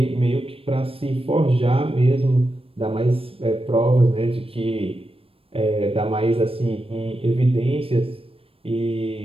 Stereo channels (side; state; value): left; late; 0.27 ms